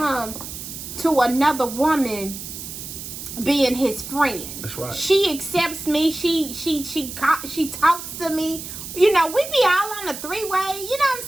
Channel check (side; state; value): right; noise; hiss, 10 dB below the sound